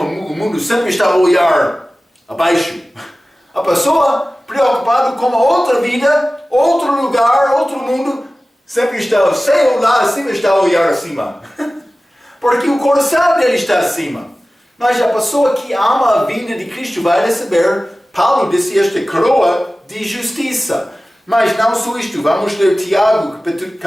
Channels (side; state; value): both; normal; correlation 0.96